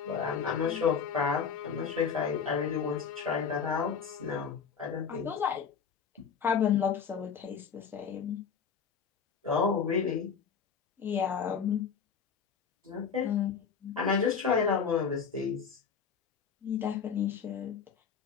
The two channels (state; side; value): quieter; right; 6.5 dB